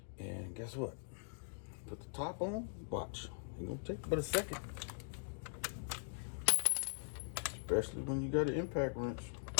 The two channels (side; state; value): right; silent; digital silence